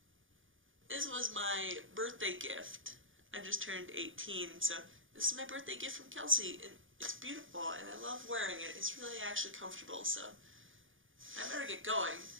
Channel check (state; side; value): late; left; 0.58 ms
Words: This was my birthday gift. I just turned 18, so this is my birthday gift from Kelsey, and it's beautiful, and I love wearing it. It's really actually comfortable, so I better get going.